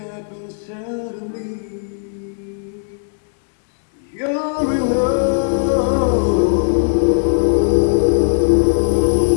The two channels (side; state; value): right; silent; digital silence